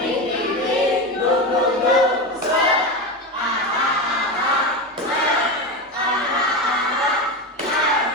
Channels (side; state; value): both; normal; correlation 0.19